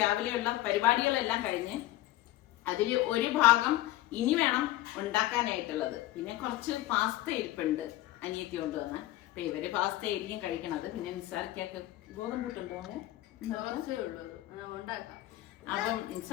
രാവിലെയുള്ള പരിപാടികളെല്ലാം കഴിഞ്ഞ് അതില് ഒരു ഭാഗം ഇനി വേണം ഉണ്ടാക്കാനായിട്ടുള്ളത്. പിന്നെ കുറച്ച് പാസ്ത ഇരിപ്പുണ്ട് അനിയത്തി കൊണ്ടുവന്ന്. അപ്പൊ ഇവര് പാസ്ത ആയിരിക്കും കഴിക്കണത്. പിന്നെ നിസാർക്കൊക്കെ ഗോതമ്പൂട്ടുണ്ടോ? അപ്പം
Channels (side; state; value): right; quieter; 15.9 dB